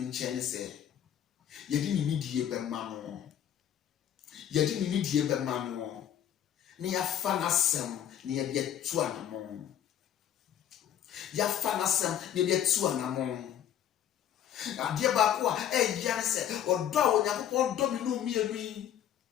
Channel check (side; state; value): right; quieter; 10.2 dB